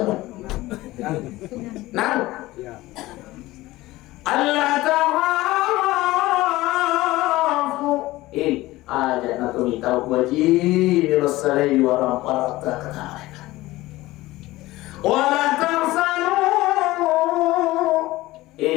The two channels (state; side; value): quieter; right; 18.2 dB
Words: nang Allah tahaku ajak nak minta wajib misalai warang parta kata wala tarsanu